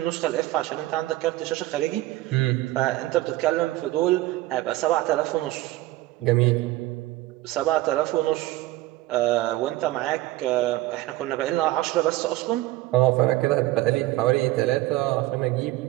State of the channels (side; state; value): left; quieter; 17.2 dB